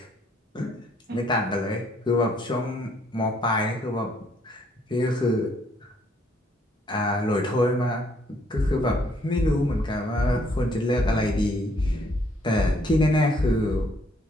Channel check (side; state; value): both; normal; correlation 0.67